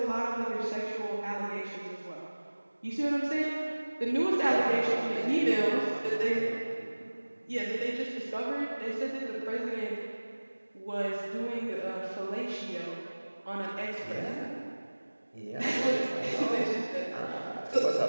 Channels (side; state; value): both; inverted; correlation -1.00